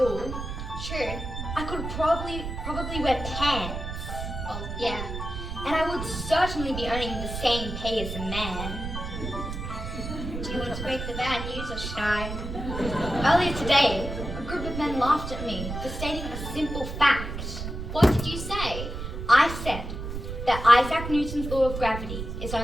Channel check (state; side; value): noise; right; rumble, 6 dB below the sound